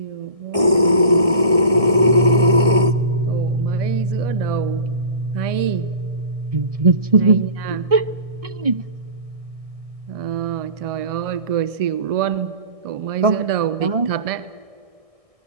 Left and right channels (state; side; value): late; left; 1.6 ms